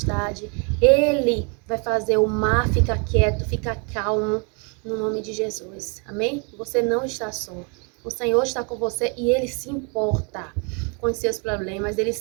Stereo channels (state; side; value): quieter; left; 35.2 dB